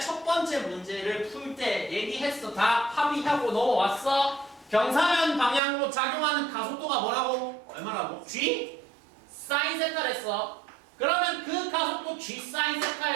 첫 번째 문제를 풀 때 얘기했어. 다 합의하고 넘어왔어. 경사면 방향으로 작용하는 가속도가 뭐라고? 얼마라고? G? 사인 세타랬어. 그러면 그 가속도 G 사인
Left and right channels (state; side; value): drops out; left; at 5.6 s